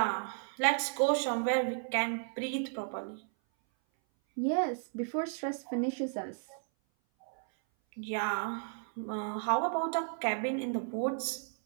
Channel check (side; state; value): left; silent; 55 dB below the other